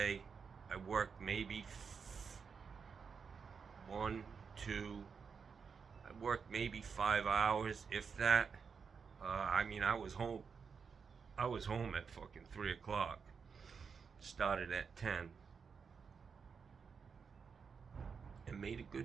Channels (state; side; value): quieter; left; 5.9 dB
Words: I worked maybe I worked maybe 5 hours, if that. I was home. I was home at fucking 3 o'clock. Started at 10. And made a